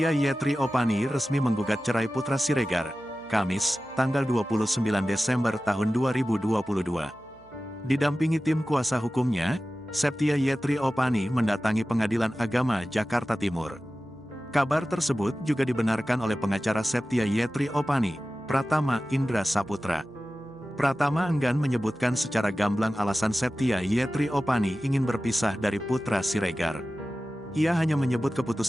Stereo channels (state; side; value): noise; right; hum, 26 dB below the sound